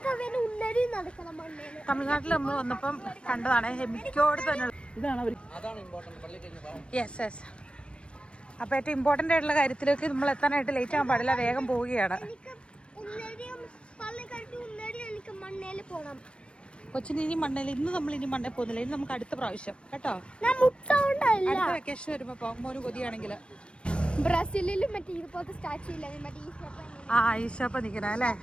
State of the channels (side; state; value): right; late; 0.058 ms